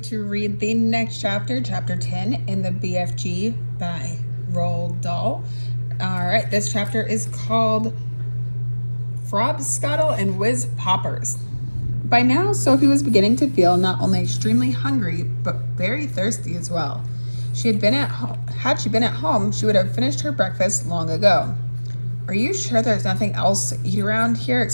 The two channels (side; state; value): both; inverted; correlation -1.00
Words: to read the next chapter, chapter 10 in the BFG by Roald Dahl. Alright, this chapter is called Frobscottle and Whiz Poppers. By now, Sophie was beginning to feel not only extremely hungry, but very thirsty as well. Had she been at home, she would have finished her breakfast long ago. Are you sure there's nothing else to eat around here